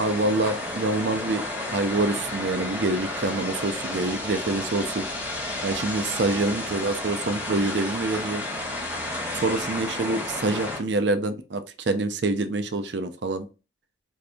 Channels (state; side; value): normal; both; correlation 0.27